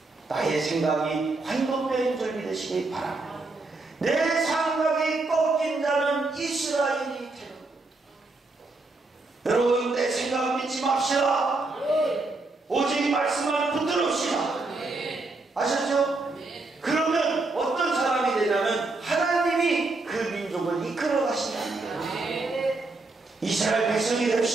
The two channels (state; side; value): quieter; left; 3.3 dB